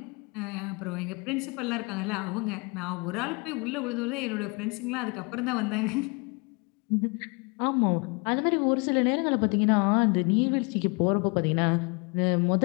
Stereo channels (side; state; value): right; quieter; 30.8 dB